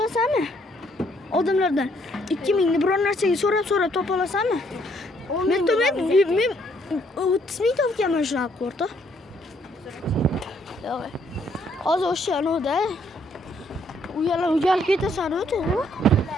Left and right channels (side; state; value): both; normal; correlation 0.68